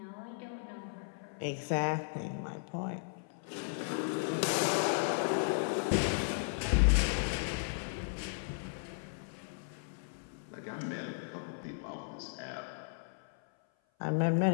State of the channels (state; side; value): silent; right; 54 dB below the other